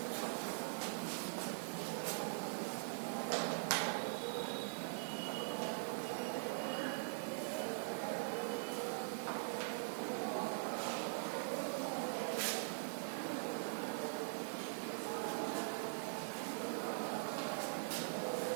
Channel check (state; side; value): silent; left; digital silence